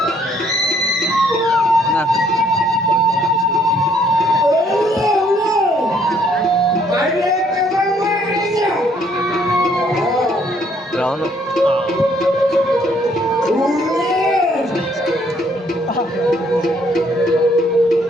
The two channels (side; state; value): both; normal; correlation 0.65